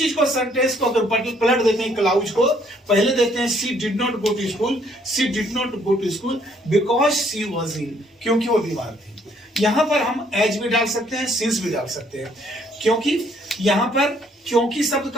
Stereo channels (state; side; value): normal; both; correlation 0.65